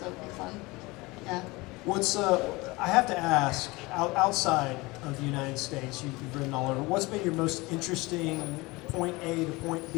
it'll be fun. Yeah. What's I have to ask, outside of the United States, you've ridden all over. What's been your most interesting point A to point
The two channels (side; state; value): right; quieter; 23.0 dB